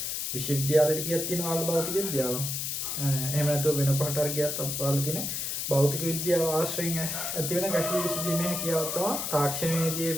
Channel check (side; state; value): left; noise; hiss, 2 dB below the sound